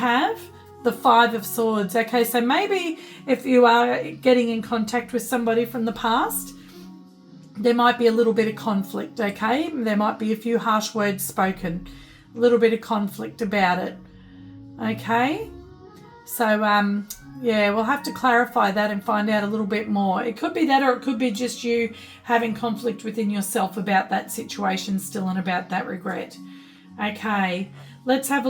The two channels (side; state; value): both; identical; correlation 1.00